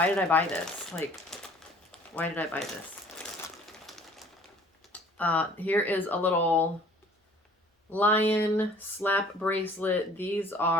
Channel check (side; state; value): both; normal; correlation 0.52